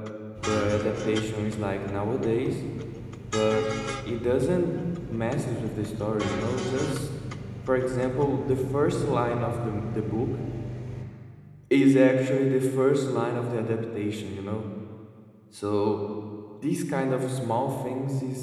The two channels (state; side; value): identical; both; correlation 1.00